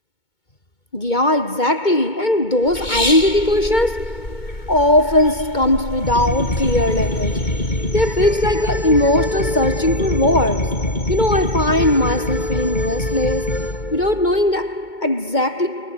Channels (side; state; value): right; late; 2.2 ms